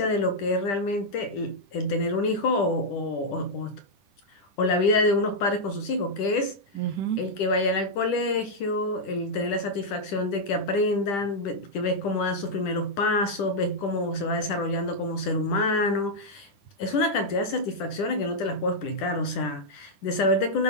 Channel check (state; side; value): late; right; 10 ms